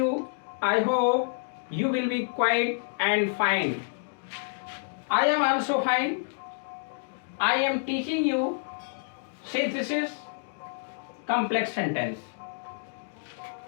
I hope you will be quiet and fine. I am also fine. I am teaching you synthesis complex sentence.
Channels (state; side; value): silent; right; digital silence